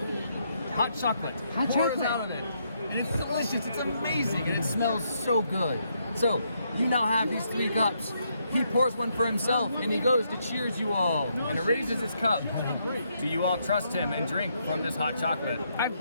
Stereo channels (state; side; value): inverted; both; correlation -0.76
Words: Hot chocolate pours out of it. And it's delicious, it's amazing, and it smells so good. So, you now have these 3 cups. He pours one for himself, and he goes to cheers you all, and raises his cup. Do you all trust him and drink from this hot chocolate? I'm